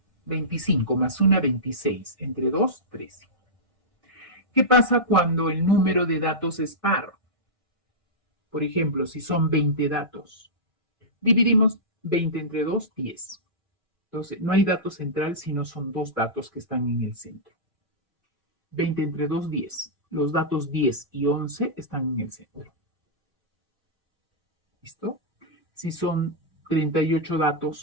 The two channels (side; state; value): both; normal; correlation -0.14